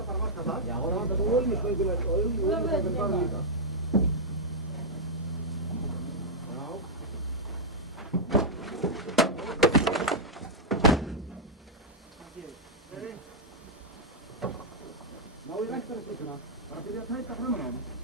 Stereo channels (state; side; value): normal; both; correlation -0.05